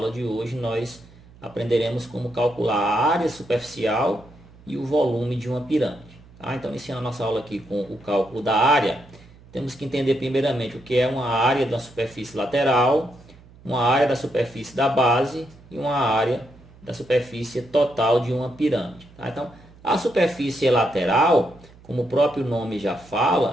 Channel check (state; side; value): noise; right; hum, 24 dB below the sound